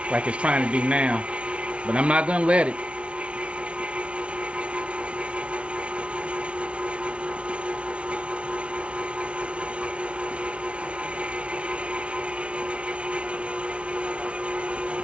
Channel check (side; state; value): left; late; 0.060 ms